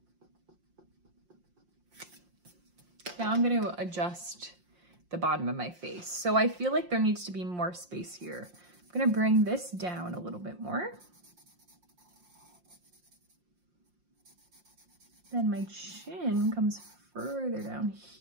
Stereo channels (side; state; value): left; late; 5.7 ms